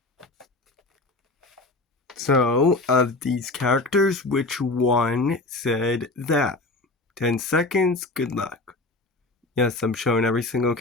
So, of these characters, which one said that? 10 seconds, good luck. Yes, I'm showing every single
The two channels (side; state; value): right; quieter; 3.1 dB